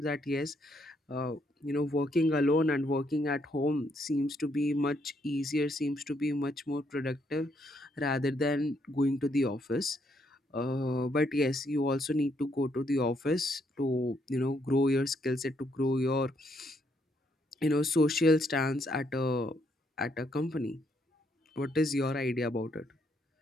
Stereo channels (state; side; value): normal; both; correlation 0.73